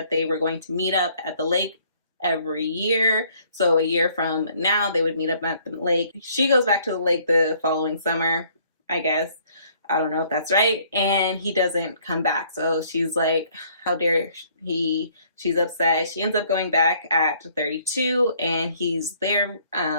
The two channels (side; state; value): both; inverted; correlation -0.61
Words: they were going to meet up at the lake every year. So a year from now, they would meet up at the lake. She goes back to the lake the following summer, I guess. I don't know if that's right. And he doesn't come back. So she's like, how dare he? She's upset. She ends up going back at 32, and he's there.